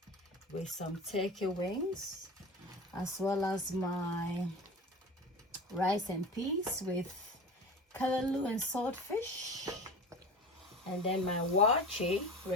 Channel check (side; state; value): both; normal; correlation 0.33